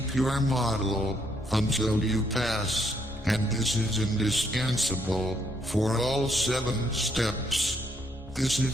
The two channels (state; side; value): normal; both; correlation 0.73